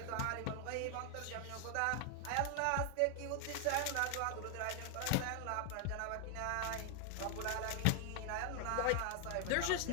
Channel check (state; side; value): different; both; correlation 0.00